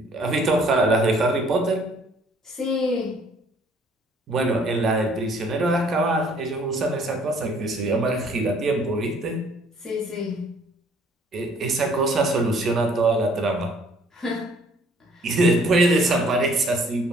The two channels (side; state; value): both; normal; correlation 0.59